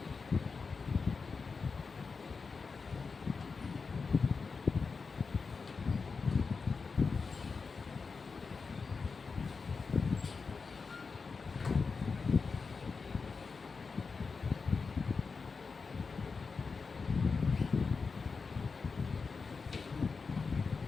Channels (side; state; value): right; quieter; 4.8 dB